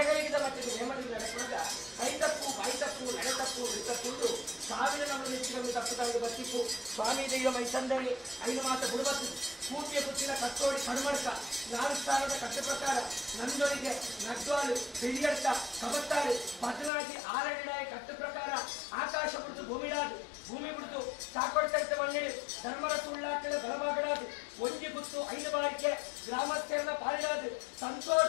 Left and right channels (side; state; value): right; drops out; at 16.9 s